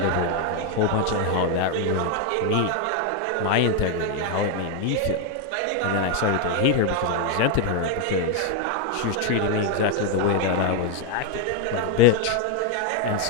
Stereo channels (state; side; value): different; both; correlation 0.01